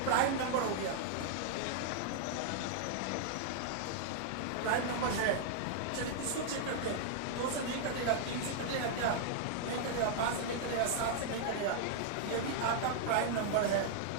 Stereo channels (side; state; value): both; different; correlation -0.01